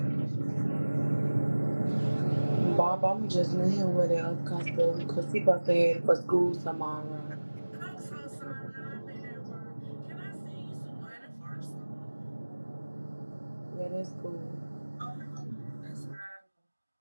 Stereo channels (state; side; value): inverted; both; correlation -1.00